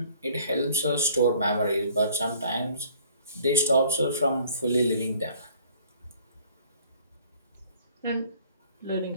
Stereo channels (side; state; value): both; inverted; correlation -0.56